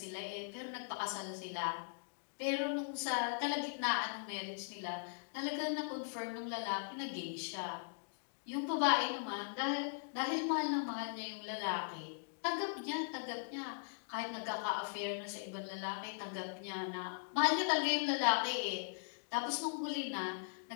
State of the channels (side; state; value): right; silent; digital silence